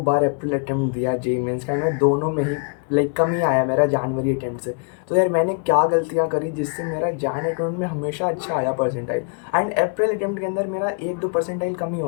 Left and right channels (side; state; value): right; quieter; 39.4 dB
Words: बार अप्रैल अटेम्प्ट दिया जेई मेंस का, एंड मैं दोनों में ही कम ही आया मेरा जनवरी अटेम्प्ट से। तो यार मैंने क्या गलतियाँ करी जिससे मेरा जैन अटेम्प्ट में हमेशा अच्छा आया परसेंटाइल, एंड अप्रैल अटेम्प्ट के अंदर मेरा 1-2 परसेंटाइल कम ही